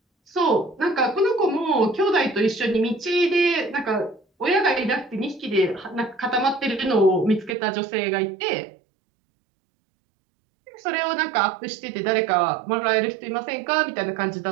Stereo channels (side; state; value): left; drops out; at 7.6 s